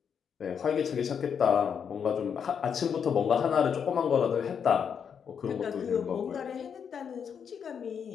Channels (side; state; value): right; quieter; 7.3 dB